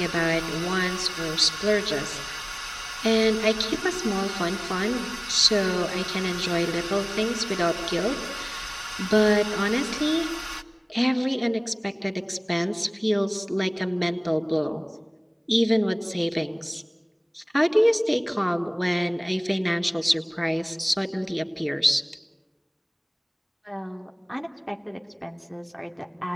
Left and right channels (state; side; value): identical; both; correlation 1.00